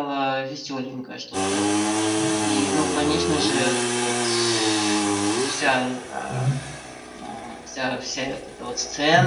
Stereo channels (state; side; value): identical; both; correlation 1.00